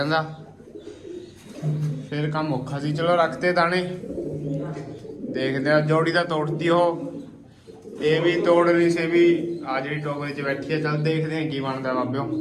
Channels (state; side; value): identical; both; correlation 1.00